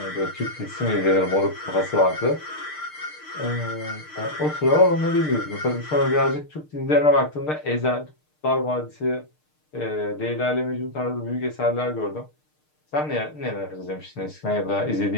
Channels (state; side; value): late; right; 6.6 ms